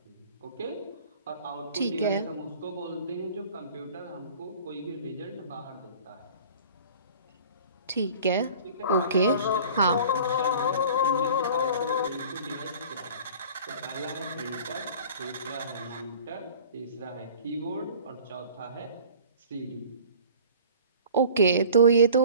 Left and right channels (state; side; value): inverted; both; correlation -0.45